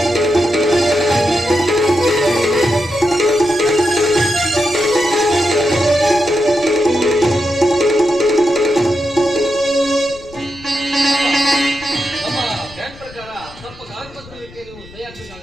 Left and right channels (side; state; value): left; noise; rumble, 21 dB below the sound